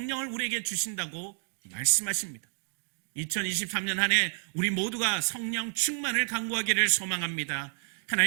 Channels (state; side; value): silent; left; digital silence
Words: 우리에게 주신다고 말씀하십니다. 2023년 한 해 우리 모두가 성령 충만을 간구하기를 소망합니다.